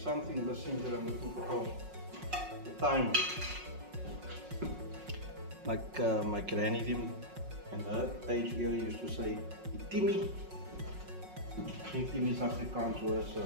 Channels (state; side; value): late; left; 5.5 ms